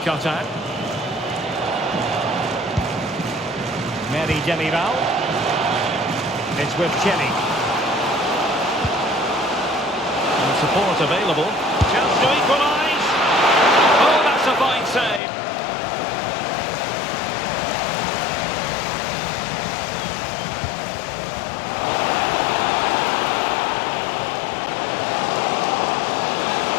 cut out. Mary Demiral. It's with Chenny. And support available. Chance to equalise. Oh, that's a fine save.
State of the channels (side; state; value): right; drops out; at 15.2 s